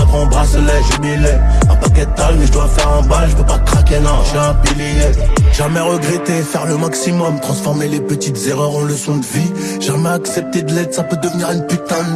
en bracelet, jubilé. Un paquet de tal mais je dois faire en balle. Je peux pas craquer, non, je suis un pilier. Jamais regretter, faire le maximum. Transformer les petites erreurs en leçons de vie. Jamais accepter de l'aide, ça peut devenir une putain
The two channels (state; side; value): identical; both; correlation 1.00